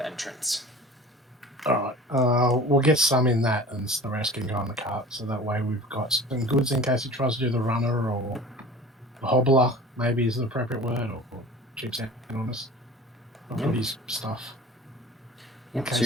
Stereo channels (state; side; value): normal; both; correlation 0.41